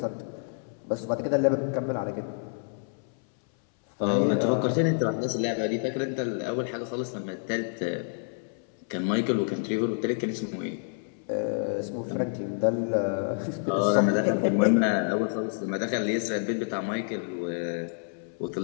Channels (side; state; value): right; silent; 59 dB below the other